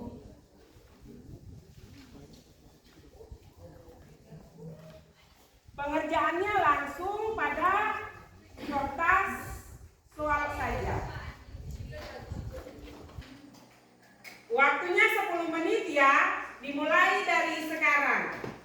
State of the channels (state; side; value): identical; both; correlation 1.00